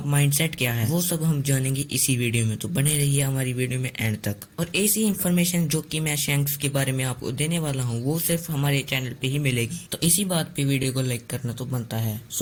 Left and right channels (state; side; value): identical; both; correlation 1.00